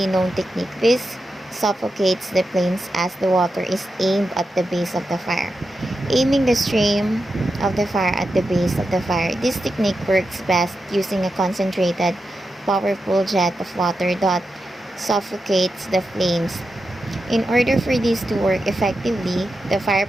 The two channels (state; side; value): normal; both; correlation 0.89